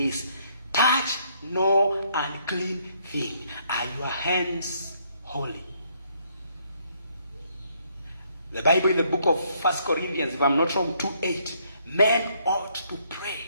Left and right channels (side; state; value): both; inverted; correlation -0.69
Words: Touch no unclean thing. Are your hands holy? The Bible in the book of 1 Corinthians, if I'm not wrong, 2:8, men ought to pray,